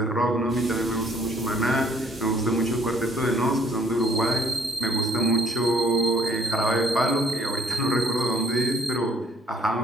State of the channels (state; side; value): normal; both; correlation 0.63